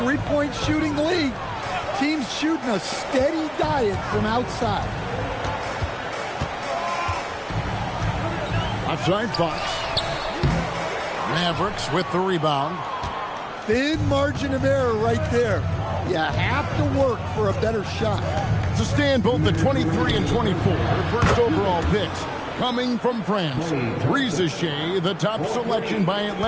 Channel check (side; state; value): both; identical; correlation 1.00